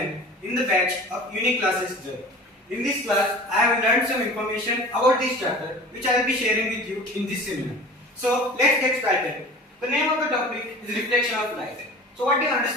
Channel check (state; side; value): normal; both; correlation 0.39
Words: in the batch of Unique Classes J. In this class, I have learned some information about this chapter which I will be sharing with you in this seminar. So let's get started. The name of the topic is reflection of light. So what do you